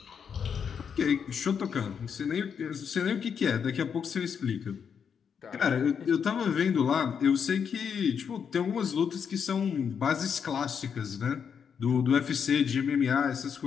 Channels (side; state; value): right; quieter; 7.1 dB